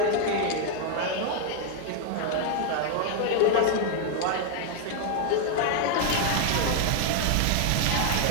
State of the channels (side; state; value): both; different; correlation 0.00